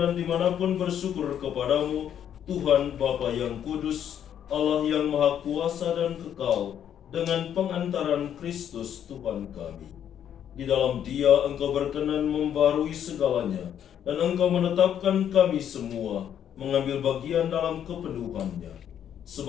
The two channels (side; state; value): right; quieter; 9.5 dB